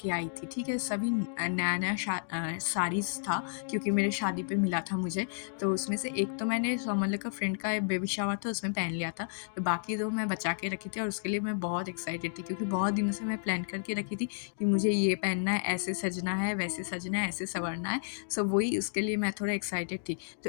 आई थी, ठीक है? सभी नया-नया साड़ीज़ था क्योंकि मेरे शादी पे मिला था मुझे। तो उसमें से एक तो मैंने मतलब का फ्रेंड का बेबी शावर था, उसमें पहन लिया था। तो बाकी 2 मैं बचा के रखी थी और उसके लिए मैं बहुत एक्साइटेड थी क्योंकि बहुत दिनों से मैं प्लान करके रखी थी कि मुझे ये पहनना है, ऐसे सजना है, वैसे सजना है, ऐसे सँवरना है। सो वही उसके लिए मैं थोड़ा एक्साइटेड थी। तो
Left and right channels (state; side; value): silent; right; digital silence